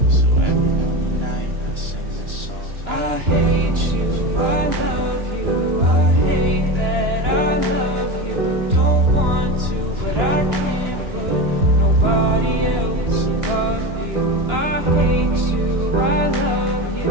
so every lonely night I sing this song. I hate you, I love you, I hate that I love you. Don't want to, but I can't put nobody else above you. I hate you, I love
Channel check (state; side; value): late; left; 2.9 ms